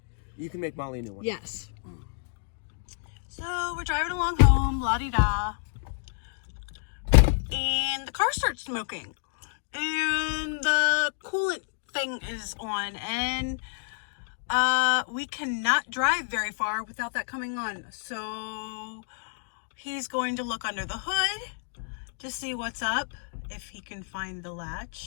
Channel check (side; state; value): right; silent; digital silence